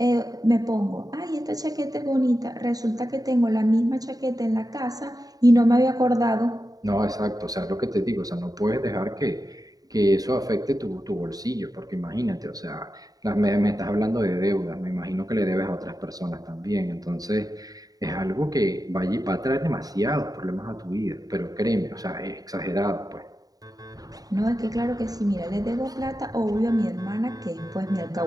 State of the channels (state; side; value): late; left; 0.18 ms